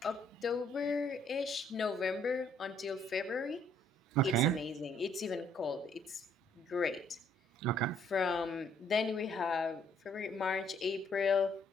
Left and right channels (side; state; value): both; normal; correlation 0.65